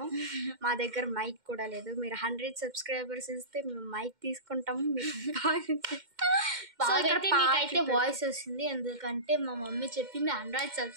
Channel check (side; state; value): left; late; 2.1 ms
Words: మా దగ్గర మైక్ కూడా లేదు. మీరు 100 సబ్స్క్రైబర్స్ ఇస్తే మేము మైక్ తీసుకుంటాము. మీకైతే వాయిస్ వస్తుంది, ఎందుకంటే మా మమ్మీ చెప్పింది 100